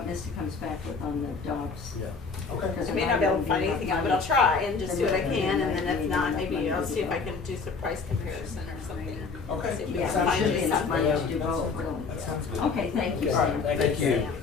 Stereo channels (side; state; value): right; quieter; 4.8 dB